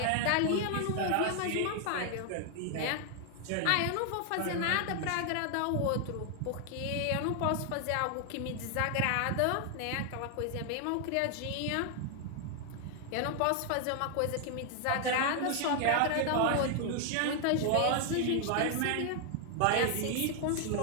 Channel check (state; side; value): different; both; correlation 0.00